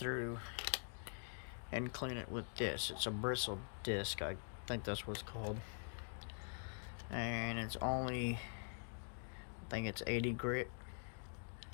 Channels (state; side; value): silent; right; digital silence